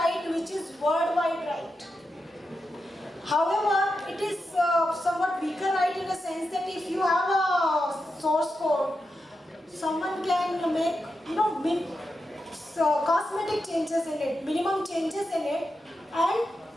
which is worldwide right. However, it is somewhat weaker right in a sense that if you have a source code, someone can make cosmetic changes in it, minimum changes in it, and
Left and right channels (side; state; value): both; normal; correlation 0.88